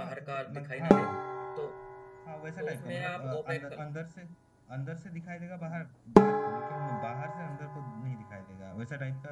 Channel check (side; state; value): both; identical; correlation 1.00